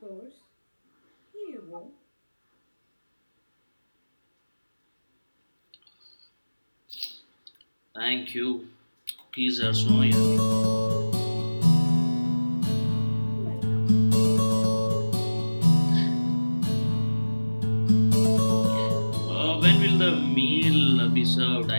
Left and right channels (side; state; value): both; inverted; correlation -1.00